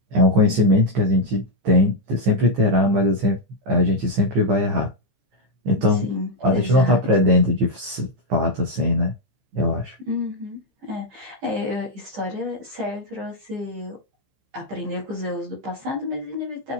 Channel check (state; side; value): late; left; 15 ms